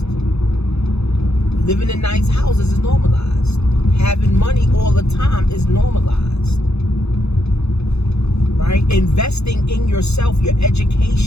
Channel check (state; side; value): late; right; 0.79 ms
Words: Living in nice houses is normalized. Having money all the time is normalized. Right? Investing in yourself, your